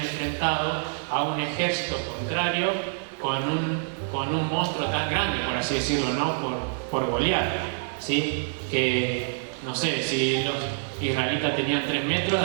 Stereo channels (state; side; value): silent; left; digital silence